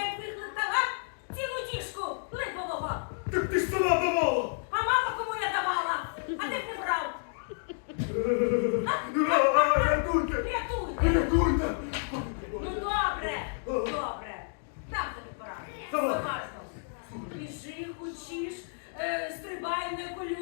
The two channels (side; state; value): right; silent; digital silence